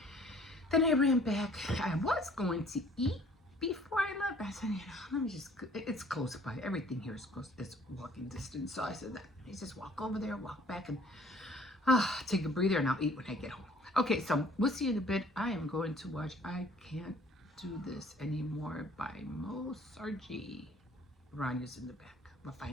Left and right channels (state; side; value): normal; both; correlation 0.55